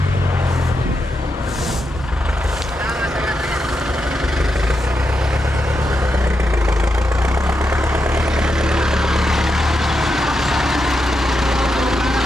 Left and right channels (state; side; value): normal; both; correlation 0.85